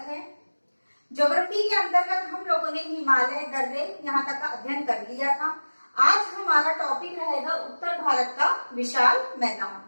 है। ज्योग्राफी के अंतर्गत हम लोगों ने हिमालय दर्रे यहाँ तक का अध्ययन कर लिया था। आज हमारा टॉपिक रहेगा उत्तर भारत का विशाल मैदान।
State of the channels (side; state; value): both; inverted; correlation -1.00